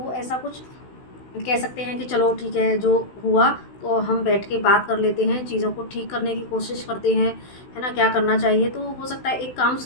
ऐसा कुछ कह सकते हैं कि चलो ठीक है, जो हुआ तो हम बैठ के बात कर लेते हैं, चीज़ों को ठीक करने की कोशिश करते हैं, है ना, क्या करना चाहिए। तो हो सकता है एक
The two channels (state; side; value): late; right; 16 ms